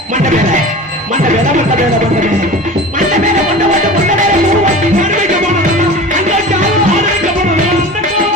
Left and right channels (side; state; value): both; normal; correlation 0.35